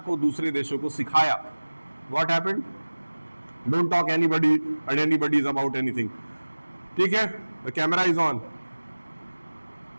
दूसरे देशों को सिखाया। What happened? Don't talk anybody and anybody is about anything. ठीक है, the camera is on.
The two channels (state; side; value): inverted; both; correlation -1.00